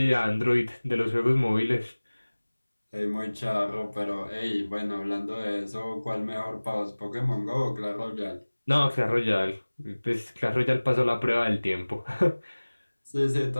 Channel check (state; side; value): inverted; both; correlation -1.00